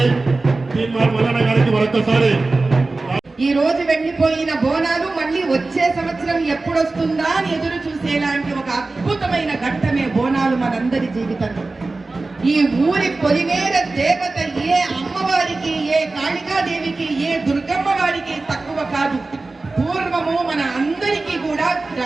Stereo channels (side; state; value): left; quieter; 3.4 dB